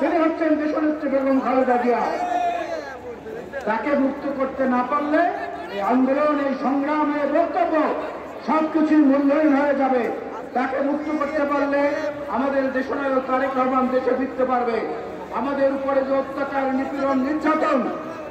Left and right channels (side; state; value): both; identical; correlation 1.00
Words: হচ্ছেন দেশনেত্রী বেগম খালেদা জিয়া। তাকে মুক্ত করতে না পারলে এই আন্দোলন, এই সংগ্রাম, এই বক্তব্য সবকিছুই মূল্যহীন হয়ে যাবে। তাকে মুক্ত করতে পারলে আমাদের দেশনায়ক তারেক রহমান দেশে ফিরতে পারবে। আমাদের উপরে যে অত্যাচার, নিপীড়ন, নির্যাতন,